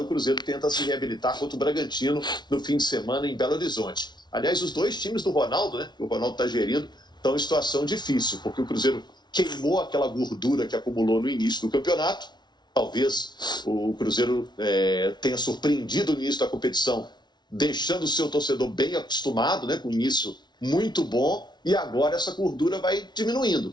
o Cruzeiro tenta se reabilitar contra o Bragantino no fim de semana em Belo Horizonte. Aliás, os dois times do Ronaldo, né, que o Ronaldo está gerindo, estão em situação difícil, porque o Cruzeiro queimou aquela gordura que acumulou no início do campeonato. Talvez o Cruzeiro tenha surpreendido no início da competição, deixando o seu torcedor bem acostumado, né, com o início muito bom, e agora essa gordura vai diminuindo. O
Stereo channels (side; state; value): right; late; 0.20 ms